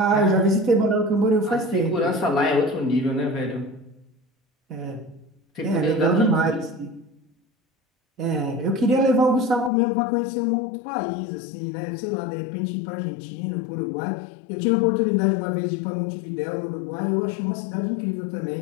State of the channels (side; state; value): right; drops out; at 9.7 s